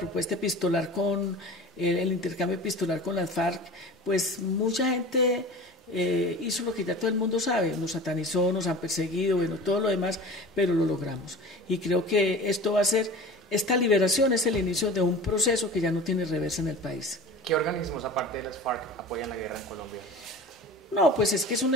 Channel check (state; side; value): normal; both; correlation 0.37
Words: epistolar con el intercambio epistolar con las FARC, pues mucha gente hizo lo que ya todo el mundo sabe, nos satanizó, nos han perseguido, bueno, todo lo demás, pero lo logramos. Y creo que esta liberación es el inicio de un proceso que ya no tiene reversa en el país. ¿Qué organismos, aparte de las FARC, apoyan la guerra en Colombia? No, pues es que es un